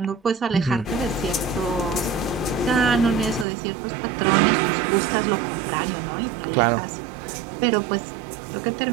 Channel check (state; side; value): drops out; left; at 3.5 s